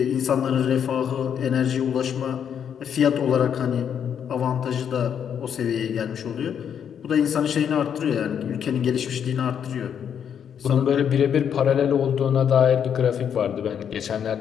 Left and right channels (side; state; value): right; quieter; 8.3 dB